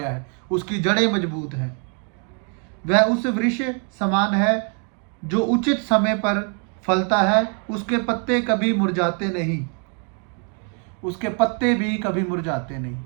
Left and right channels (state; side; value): quieter; left; 39.4 dB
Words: है, उसकी जड़ें मजबूत हैं। वह उस वृक्ष समान है जो उचित समय पर फलता है, उसके पत्ते कभी मुरझाते नहीं, उसके पत्ते भी कभी मुरझाते नहीं,